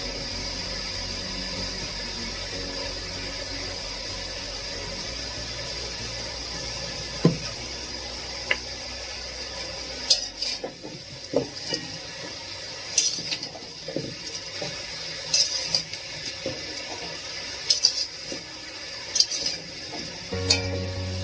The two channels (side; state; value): both; identical; correlation 1.00